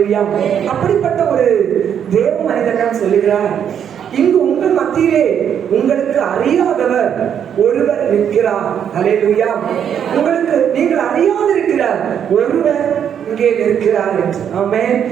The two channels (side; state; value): left; quieter; 8.6 dB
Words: அப்படிப்பட்ட ஒரு தேவ மனிதன் தான் சொல்லுகிறார், இங்கு உங்கள் மத்தியிலே உங்களுக்கு அறியாதவர் ஒருவர் நிற்கிறார். அல்லேலூயா. உங்களுக்கு நீங்கள் அறியாதிருக்கிறார் ஒருவர் இங்கே நிற்கிறார் என்று. ஆமென்.